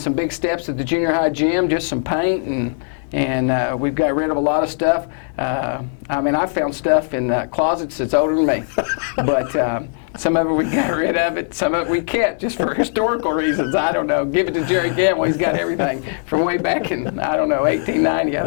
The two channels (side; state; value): right; silent; digital silence